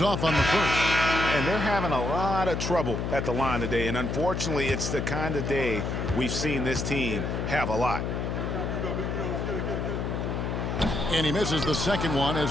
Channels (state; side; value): noise; left; hum, 2 dB below the sound